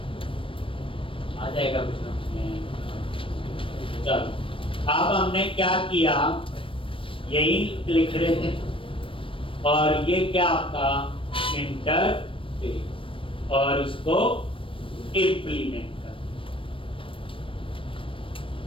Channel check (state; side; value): late; right; 0.25 ms